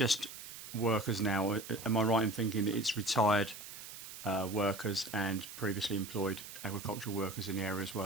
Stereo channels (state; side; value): noise; right; hiss, 12 dB below the sound